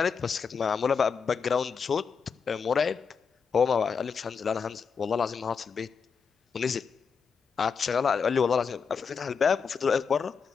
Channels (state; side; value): quieter; right; 5.9 dB